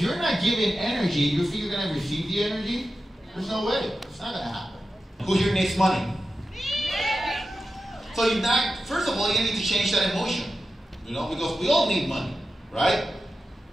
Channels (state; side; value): normal; both; correlation 0.91